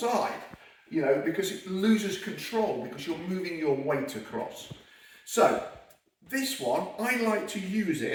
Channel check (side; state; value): both; identical; correlation 1.00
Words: because it loses control because you're moving your weight across. So this one, I like to use